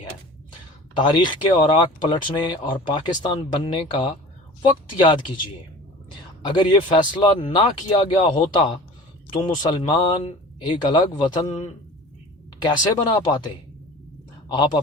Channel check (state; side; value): normal; both; correlation 0.40